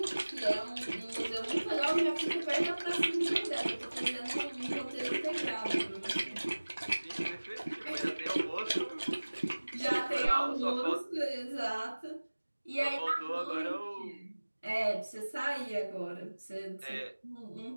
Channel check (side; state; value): both; inverted; correlation -1.00